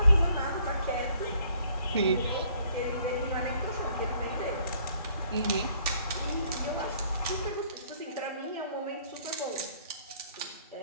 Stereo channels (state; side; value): inverted; both; correlation -0.62